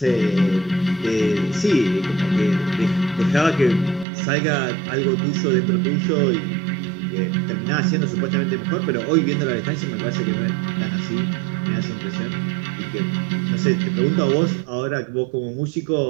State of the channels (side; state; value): left; drops out; at 4.0 s